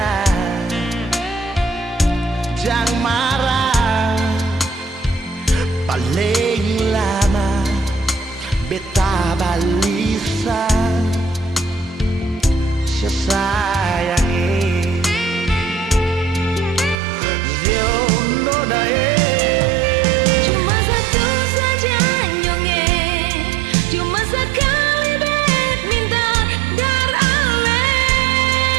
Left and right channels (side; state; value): left; drops out; at 16.9 s